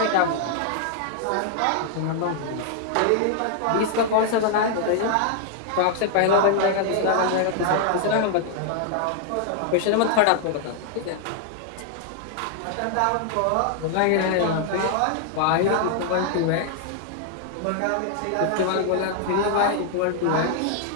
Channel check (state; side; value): different; both; correlation 0.00